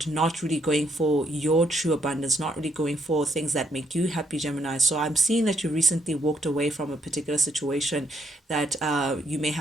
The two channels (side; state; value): both; normal; correlation 0.73